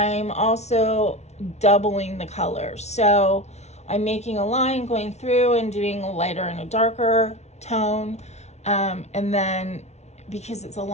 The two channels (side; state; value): right; late; 0.32 ms